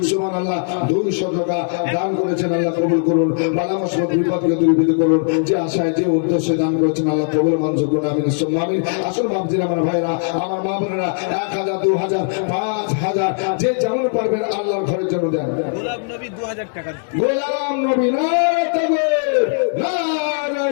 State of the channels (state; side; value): silent; right; 66 dB below the other